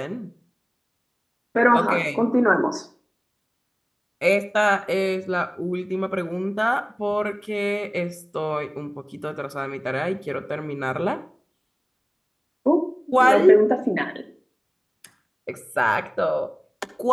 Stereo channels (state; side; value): identical; both; correlation 1.00